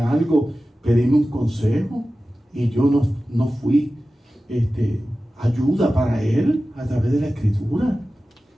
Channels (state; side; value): normal; both; correlation 0.95